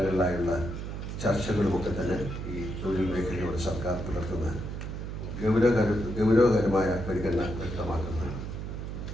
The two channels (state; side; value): noise; right; hum, 6 dB below the sound